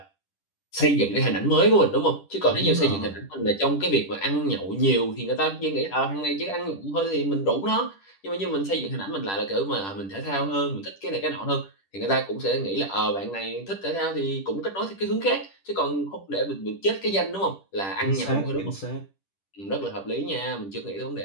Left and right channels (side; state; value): right; late; 10 ms